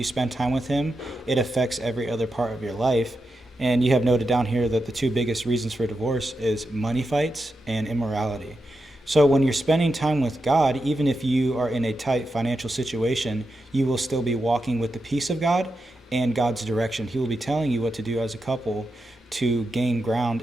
spend time with him, it affects every other part of your life. And you have noted down here that the two biggest reasons for divorce is money fights and immorality. So when you're spending time with God, even if you are in a tight financial situation, you will still be walking with the peace of God and God's direction. He will be telling you what to do as a couple to gain ground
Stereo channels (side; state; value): both; normal; correlation 0.88